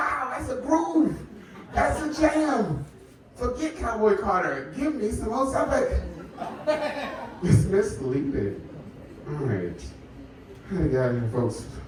that's a groove. That's a jam. Forget Cowboy Carter. Give me some old Suffolk. It's misleading. All right. How we got here, folks?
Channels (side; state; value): both; identical; correlation 1.00